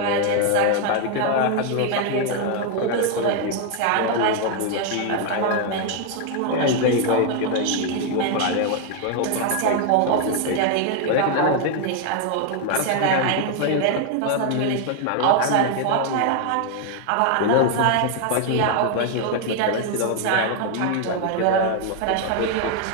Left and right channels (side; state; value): both; different; correlation 0.01